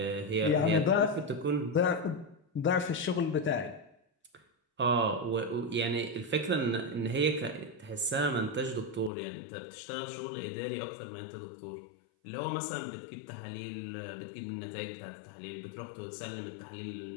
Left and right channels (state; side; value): drops out; right; at 9.1 s